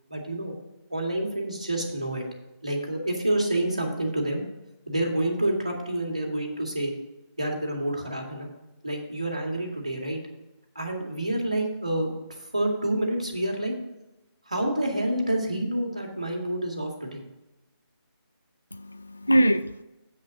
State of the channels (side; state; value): both; inverted; correlation -0.87